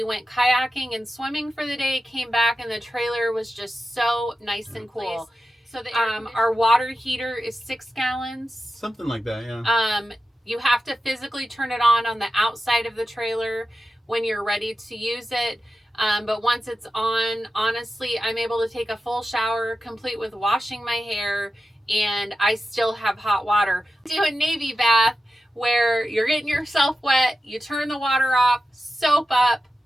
went kayaking and swimming for the day, came back, and the trailer was just so nice and cool. So the our water heater is 6 gallons. Something like that, yeah. You have to physically turn it on the outside of the trailer when you're ready to use it. But once it's on, honestly, I'm able to take a full shower, complete with washing my hair, and I still have hot water. Do a Navy bath where you're getting yourself wet, you turn the water off, soap up,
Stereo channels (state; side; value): normal; both; correlation 0.92